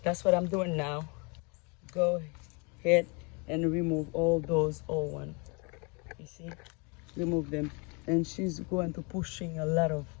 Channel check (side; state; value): right; quieter; 31.8 dB